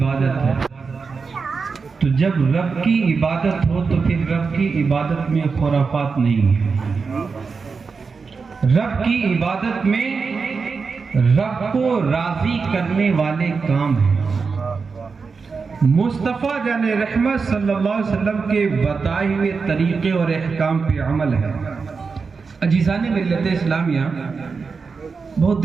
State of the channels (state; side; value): quieter; left; 4.9 dB